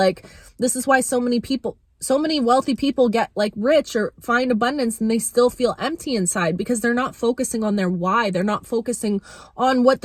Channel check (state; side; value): identical; both; correlation 1.00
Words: this is why so many wealthy people get like rich or find abundance and they still feel empty inside, because they're not focusing on their why. They're not focusing on what